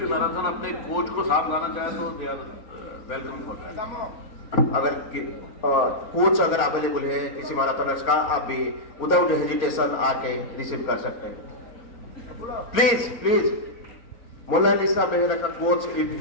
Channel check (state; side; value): late; right; 4.4 ms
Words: मैराथन अपने कोच को साथ लाना चाहे तो they are welcome for that. अगर कोच अगर अवेलेबल है किसी मैराथनर्स का आप भी विदाउट हेजिटेशन आके रिसीव कर सकते हैं. प्लीज प्लीज मोनालिसा बेहरा का coach if